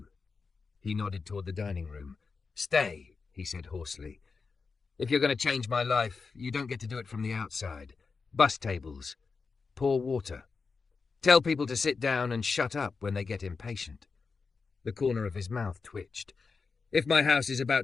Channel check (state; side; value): quieter; right; 4.8 dB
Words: He nodded toward the dining room. "Stay," he said hoarsely. "If you're going to change my life, you don't get to do it from the outside. Bus tables. Pour water. Tell people to sit down and shut up when they get impatient." The corner of his mouth twitched. "If my house is